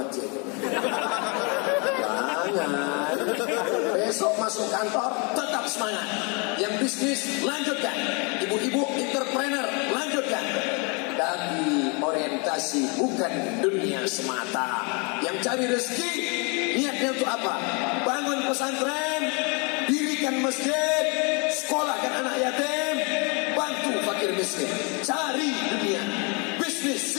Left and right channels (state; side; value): quieter; right; 32.8 dB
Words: mati aja. Jangan. Besok masuk kantor tetap semangat. Yang bisnis lanjutkan. Ibu-ibu entrepreneur lanjutkan. Tapi orientasi bukan dunia semata. Yang cari rezeki niatnya untuk apa? Bangun pesantren, dirikan masjid, sekolahkan anak yatim, bantu fakir miskin. Cari dunia, bisnis